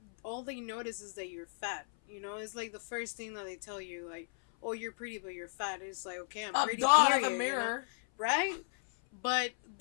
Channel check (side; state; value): right; silent; 54 dB below the other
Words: all they notice is that you're fat. You know, it's like the first thing that they tell you, like, oh, you're pretty, but you're fat. It's like, okay, I'm pretty. Duh, I have a period, mirror. right? But